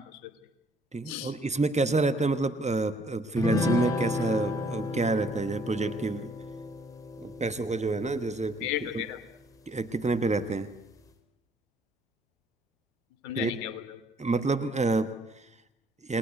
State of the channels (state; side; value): normal; both; correlation 0.63